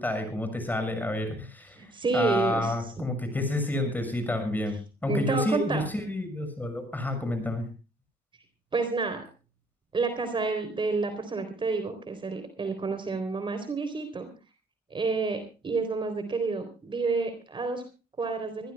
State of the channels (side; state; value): both; normal; correlation 0.62